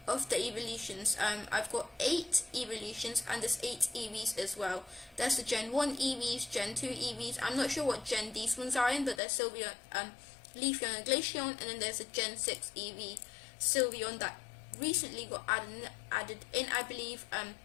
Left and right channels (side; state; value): right; drops out; at 9.2 s